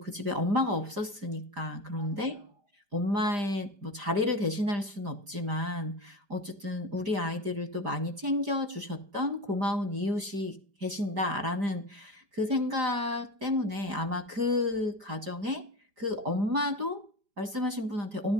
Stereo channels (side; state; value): left; late; 5.0 ms